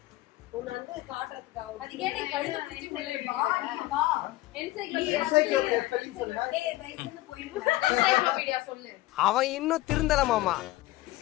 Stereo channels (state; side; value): quieter; right; 17.8 dB